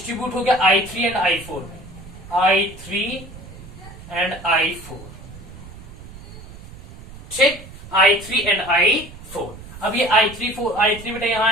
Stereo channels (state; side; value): noise; right; rumble, 16 dB below the sound